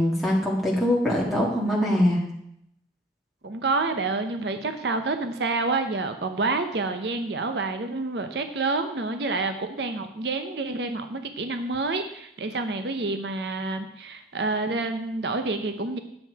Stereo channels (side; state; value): both; normal; correlation 0.37